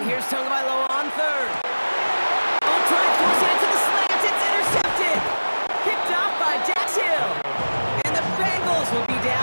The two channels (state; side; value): inverted; both; correlation -1.00